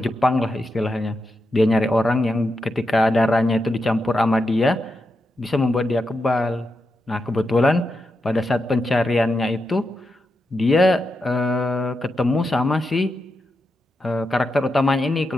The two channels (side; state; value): both; normal; correlation 0.87